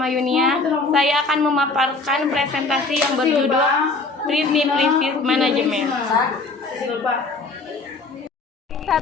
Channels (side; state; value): right; quieter; 3.7 dB